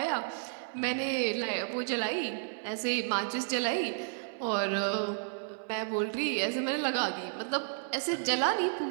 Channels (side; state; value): left; silent; 56 dB below the other